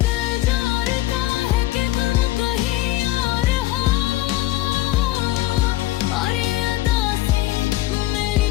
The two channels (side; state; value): right; quieter; 16.5 dB